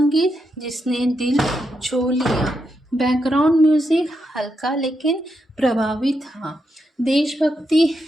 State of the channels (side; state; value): both; normal; correlation 0.83